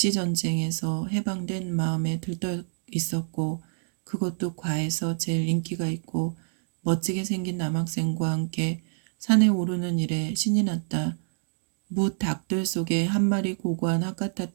해방된 마음에 들떠 있었고 그것도 과에서 제일 인기가 있고 멋지게 생긴 남학생과 함께 산에 오르는 일에 신이 났다. 무닭들 속에 한 마리 고고한 학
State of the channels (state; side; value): silent; left; digital silence